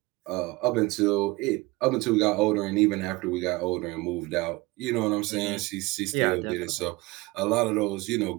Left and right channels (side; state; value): left; quieter; 22.3 dB